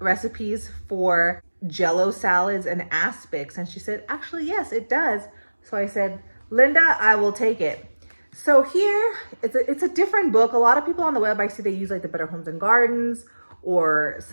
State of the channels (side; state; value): both; inverted; correlation -1.00